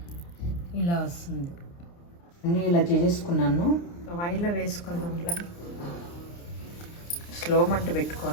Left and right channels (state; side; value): late; right; 29 ms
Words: ఇలా వస్తుంది. అన్నీ ఇలా చేసేసుకున్నాను. ఆయిల్లో వేసుకుందాం. ఇలా స్లో మంట